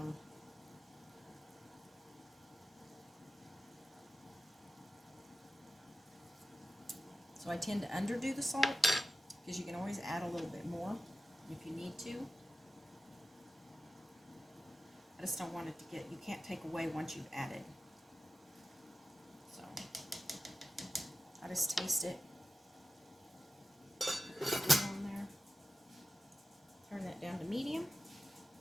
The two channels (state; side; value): normal; both; correlation 0.93